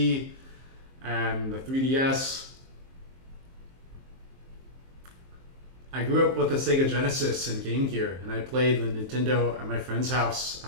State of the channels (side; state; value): left; late; 23 ms